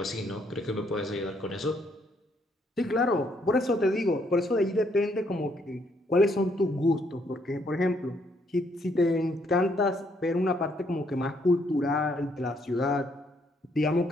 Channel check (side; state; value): both; normal; correlation 0.71